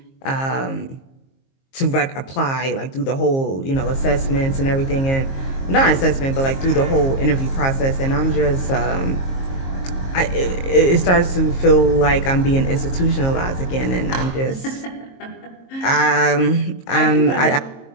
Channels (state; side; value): late; right; 22 ms